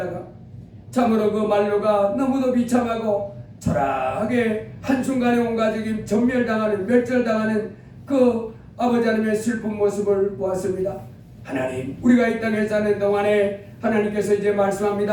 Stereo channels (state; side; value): identical; both; correlation 1.00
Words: 참으로 그 말로가 너무도 비참하고 초라하게 한순간에 온 가족이 전멸당하는, 멸절당하는 그 아버지 하나님의 슬픈 모습을 보았습니다. 하나님, 우리가 이 땅에 사는 동안에 하나님께서 이제